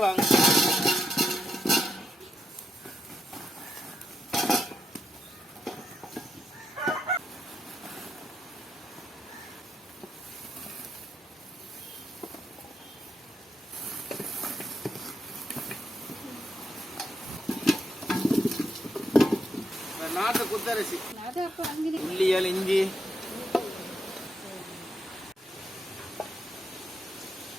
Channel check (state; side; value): normal; both; correlation 0.81